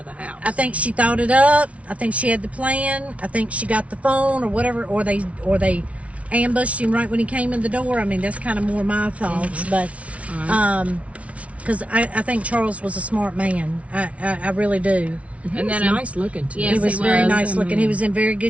the house. I think she thought it up. I think she had the plan. I think she got the phone or whatever, or they ambushed him right when he came in the door. I mean, that's kind of more my thoughts, but because I think Charles was a smart man. I really do. And then nice looking too. Yes, he was very nice looking. He was in very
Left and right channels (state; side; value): late; left; 0.064 ms